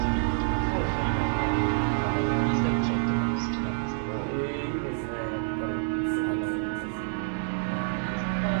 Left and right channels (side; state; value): left; silent; digital silence